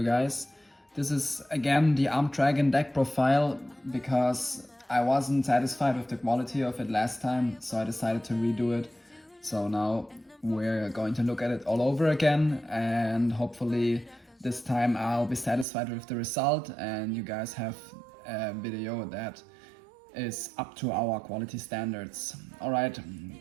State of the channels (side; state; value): left; drops out; at 15.7 s